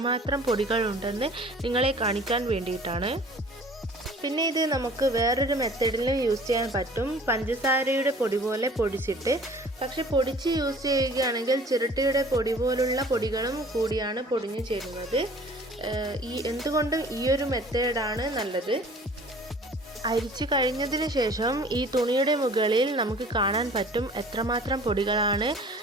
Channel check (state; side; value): normal; both; correlation 0.49